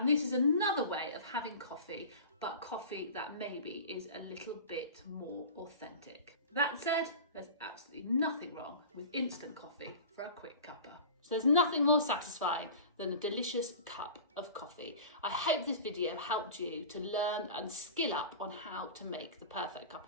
this is another way of having coffee, but coffee that maybe is a little bit more authentic. That said, there's absolutely nothing wrong with instant coffee for a quick cuppa. So there's nothing more satisfying than a delicious cup of coffee. I hope this video helped you to learn and skill up on how to make the perfect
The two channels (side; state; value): both; inverted; correlation -0.36